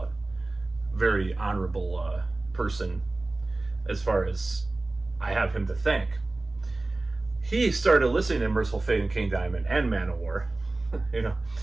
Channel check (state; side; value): quieter; left; 3.0 dB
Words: Very honorable person, as far as I have him to thank. He started listening to Merciful Fate and King Diamond and Manowar,